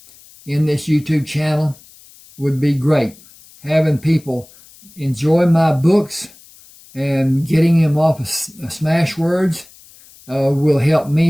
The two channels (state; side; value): noise; left; hiss, 25 dB below the sound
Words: in this YouTube channel would be great. Having people enjoy my books and getting them off of Smashwords will help